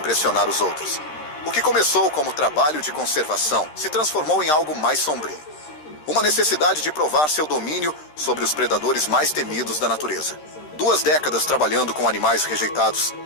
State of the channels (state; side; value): late; right; 13 ms